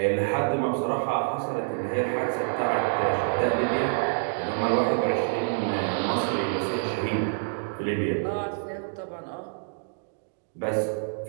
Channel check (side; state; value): left; silent; digital silence